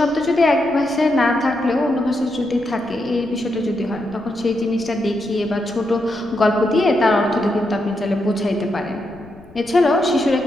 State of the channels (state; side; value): noise; left; rumble, 24 dB below the sound